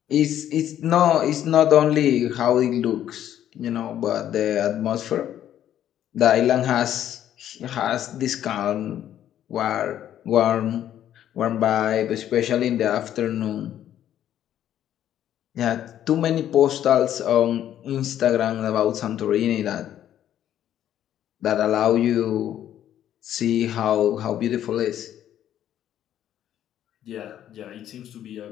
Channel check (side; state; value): right; quieter; 11.1 dB